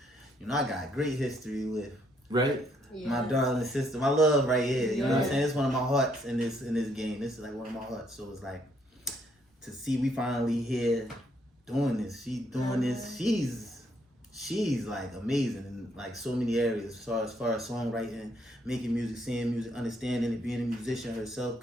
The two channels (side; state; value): both; normal; correlation 0.70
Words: you know, I got great history with my darling sister, my love right here. You know what I'm saying? It's one of my hearts in this game. This is like one of my hearts. So it's like, to see we finally here doing this. She's doing this. She's like amazing in like so many areas as far as songwriting, making music, seeing music, understanding it, being a musician herself,